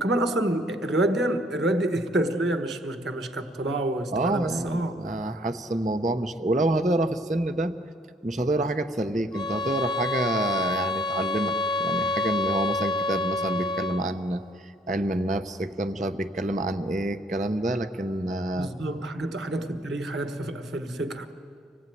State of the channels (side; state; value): both; normal; correlation 0.63